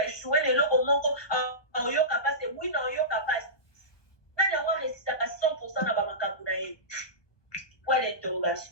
échoué le lot, au Moko, en Yoka passe, oui, non, Yoka passe. Mais on résiste à 100% dans Bamakabunaï. Point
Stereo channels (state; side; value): late; right; 1.2 ms